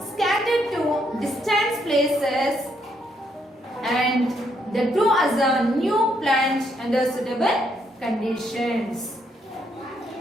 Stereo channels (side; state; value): both; normal; correlation 0.74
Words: scattered to distant places and they grow as a new plant under suitable conditions.